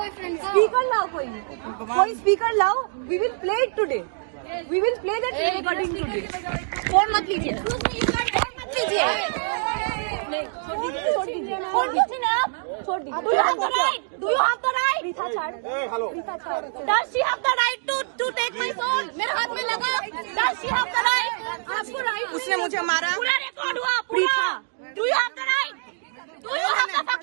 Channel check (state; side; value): silent; left; digital silence